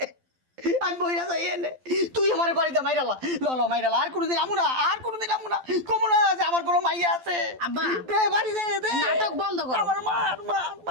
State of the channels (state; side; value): late; left; 12 ms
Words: আমি বইরা যাই এনে, তুই আমার বাড়িতে মাইরালা, ল মাইরালা, আর কোনোদিন আমু না, আর কোনোদিন আমু না, কমু না যে আমার কোনো মাইয়া আছে। আব্বা, দে বাড়ি দে, দে নাটক বন্ধ করো। আমার মার মার